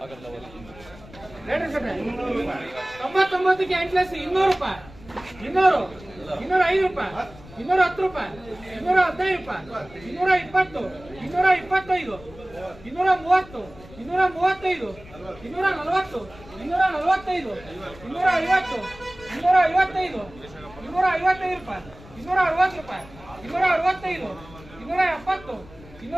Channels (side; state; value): left; noise; rumble, 20 dB below the sound